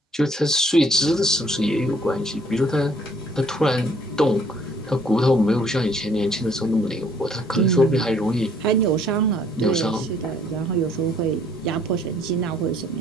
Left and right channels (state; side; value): normal; both; correlation 0.62